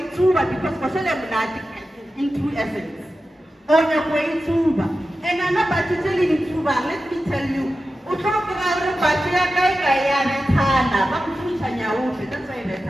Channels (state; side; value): normal; both; correlation 0.93